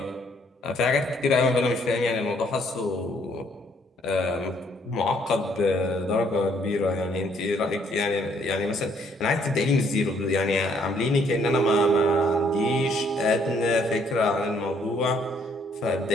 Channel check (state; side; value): normal; both; correlation 0.66